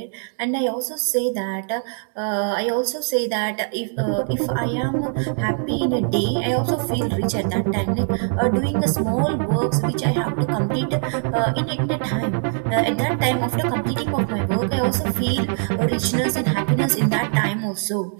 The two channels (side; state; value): left; silent; 58 dB below the other